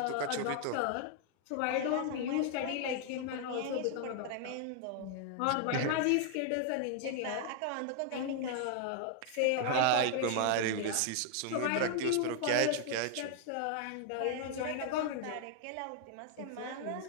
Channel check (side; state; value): both; different; correlation 0.00